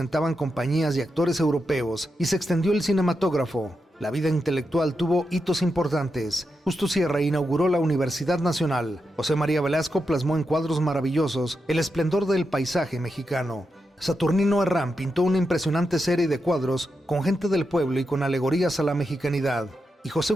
compañías y actores europeos y se extendió el cinematógrafo. La vida intelectual tuvo hitos importantes. Justo Sierra inauguró la Universidad Nacional. José María Velasco plasmó en cuadros maravillosos el esplendor del paisaje mexicano. Saturnino Herrán pintó una impresionante serie de cuadros con gente del pueblo y con alegorías a la mexicanidad. Y José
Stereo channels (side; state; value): both; normal; correlation 0.87